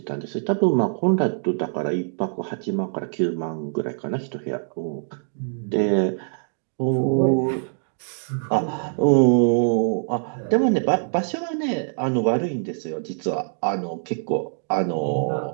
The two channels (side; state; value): left; silent; digital silence